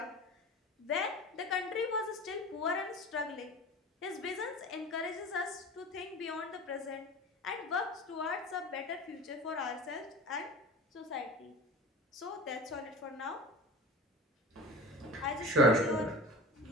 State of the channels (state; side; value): normal; both; correlation 0.35